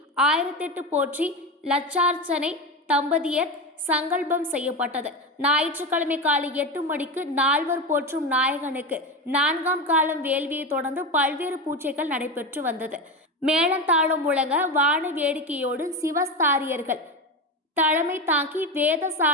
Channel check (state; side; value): normal; both; correlation 0.19